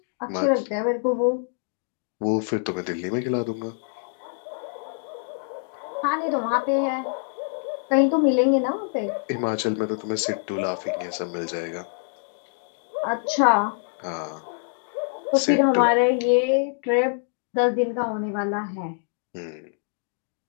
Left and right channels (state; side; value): silent; right; digital silence